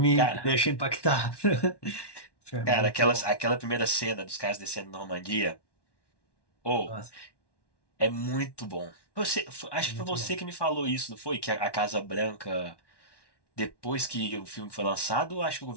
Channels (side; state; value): right; late; 1.1 ms